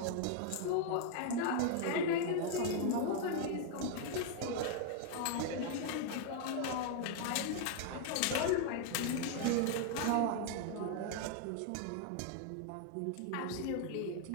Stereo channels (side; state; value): both; different; correlation 0.00